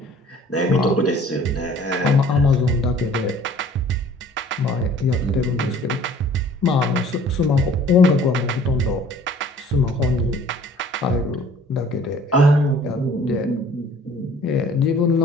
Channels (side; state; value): both; normal; correlation 0.52